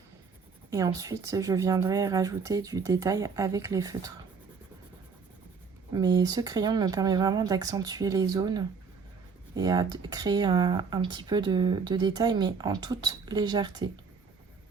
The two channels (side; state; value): left; quieter; 5.4 dB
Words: Et ensuite, je viendrai rajouter du détail avec les feutres. Mais ce crayon me permet vraiment d'accentuer les zones et à créer un petit peu de détail, mais en toute légèreté.